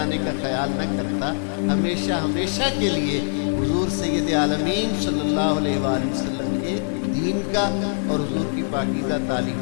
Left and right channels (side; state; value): right; silent; 59 dB below the other